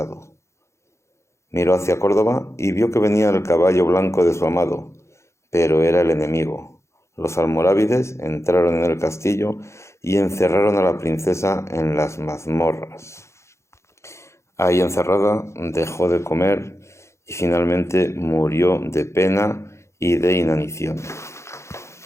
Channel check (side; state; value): right; late; 0.14 ms